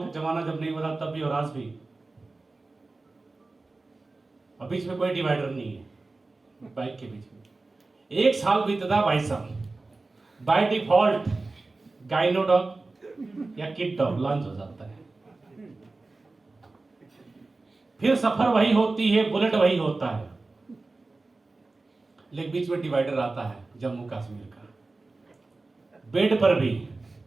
का जमाना जब नहीं हुआ तब भी और आज भी। और बीच में कोई डिवाइडर नहीं है बाइक के बीच में। एक साल बीतता भाई साहब, बाय डिफॉल्ट गाइनो डॉग या किड डॉग लॉन्च हो जाता है, फिर सफर वही होती है, बुलेट वही होता है, लेकिन बीच में डिवाइडर आता है जम्मू कश्मीर का। बेड पर भी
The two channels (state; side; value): quieter; left; 3.4 dB